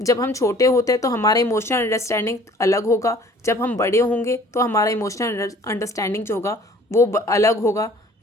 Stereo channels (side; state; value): both; normal; correlation 0.52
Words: जब हम छोटे होते हैं तो हमारा इमोशनल अंडरस्टैंडिंग अलग होगा, जब हम बड़े होंगे तो हमारा इमोशनल अंडरस्टैंडिंग जो होगा वो अलग होगा।